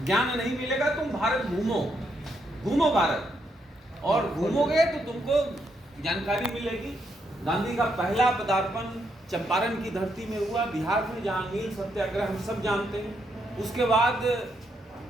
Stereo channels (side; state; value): both; normal; correlation 0.77